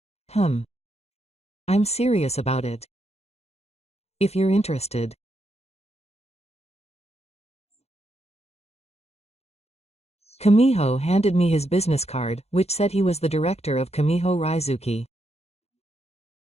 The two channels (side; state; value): right; late; 0.31 ms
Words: I'm serious about it. If you're interested. Kamiho handed me his business card, which said he was the director of Kamiho Raizuki.